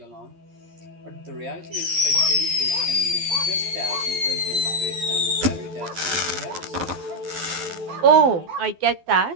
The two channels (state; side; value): late; left; 12 ms